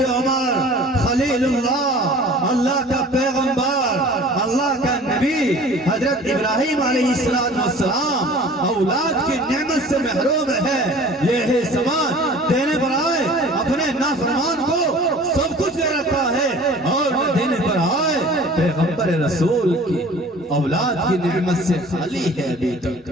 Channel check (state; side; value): normal; both; correlation 0.46